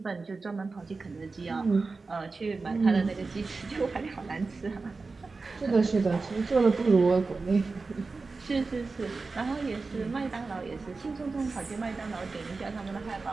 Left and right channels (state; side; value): quieter; left; 4.0 dB